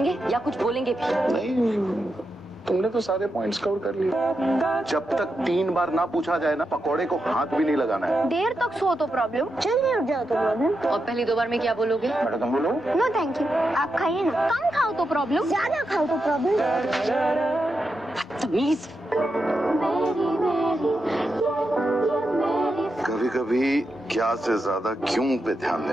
या कुछ बोलेंगे भी? नहीं, तुमने तो सारे पॉइंट्स कवर कर लिए। जब तक 3 बार ना पूछा जाए ना, पकौड़े को हाथ भी नहीं लगाना है। देर तक सो तो प्रॉब्लम, जल्दी उठ जाओ तो प्रॉब्लम। और पहली 2 बार में क्या बोलोगे? बेटा तुम बोलो। नो थैंक यू, आप खाइए ना। कम खाओ तो प्रॉब्लम, ज्यादा खाओ तो प्रॉब्लम। बदतमीज। कभी कभी क्या से ज्यादा क्यों पे ध्यान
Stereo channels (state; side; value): normal; both; correlation 0.87